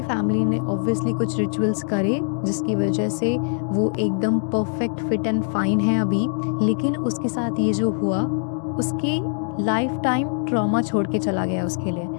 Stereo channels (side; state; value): right; silent; digital silence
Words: फैमिली ने ऑब्वियसली कुछ रिचुअल्स करे, जिसकी वजह से वो एकदम परफेक्ट फिट एंड फाइन है अभी। लेकिन उसके साथ ये जो हुआ, उसके लाइफ टाइम ट्रॉमा छोड़ के चला गया उसके लिए,